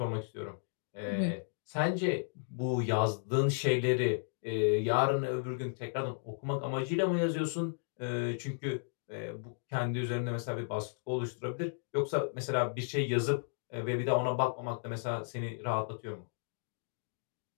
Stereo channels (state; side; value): silent; right; digital silence